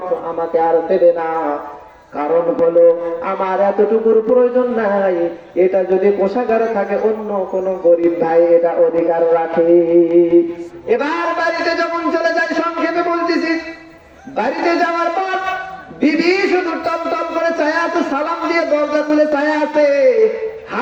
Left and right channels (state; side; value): identical; both; correlation 1.00